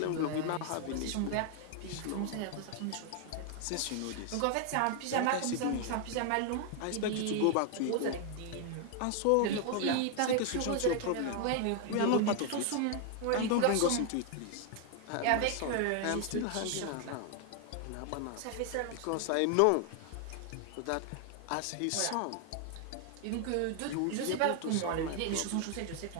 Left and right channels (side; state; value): both; different; correlation 0.00